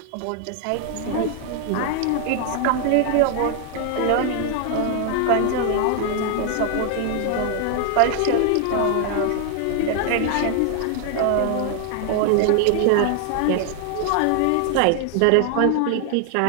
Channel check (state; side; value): different; both; correlation 0.00